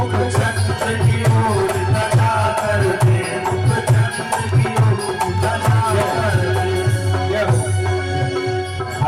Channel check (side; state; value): both; identical; correlation 1.00